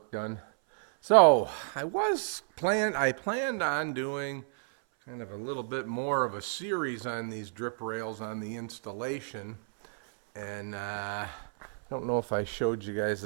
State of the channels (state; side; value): silent; left; 57 dB below the other